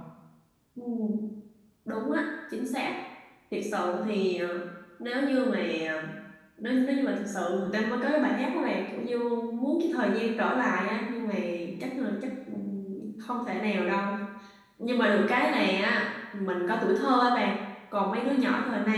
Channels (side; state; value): both; identical; correlation 1.00